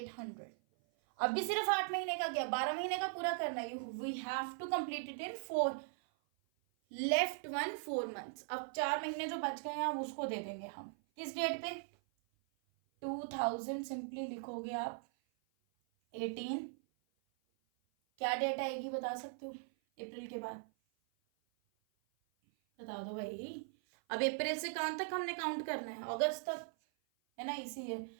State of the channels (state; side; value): silent; left; 51 dB below the other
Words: अब भी सिर्फ 8 महीने का गया, 12 महीने का पूरा करना है। We have to complete it in 4, left 4 months. अब 4 महीने जो बच गए हैं अब उसको दे देंगे हम, किस डेट पे? 2000, सिंपली लिखोगे आप 18, क्या डेट आएगी बता सकते हो अप्रैल के बाद? बता दो भाई। अब अप्रैल से कहाँ तक हमने काउंट करना है? अगस्त तक, है ना, इसी है।